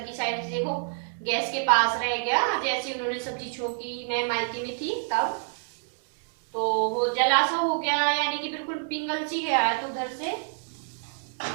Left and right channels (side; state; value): left; silent; 60 dB below the other